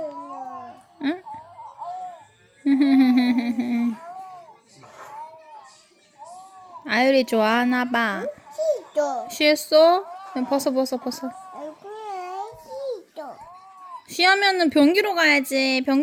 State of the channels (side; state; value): both; identical; correlation 1.00